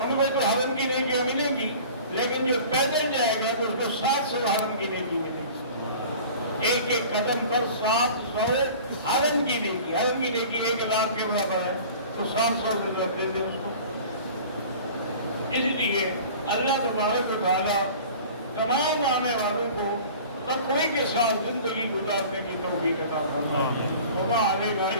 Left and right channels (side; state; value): both; inverted; correlation -0.43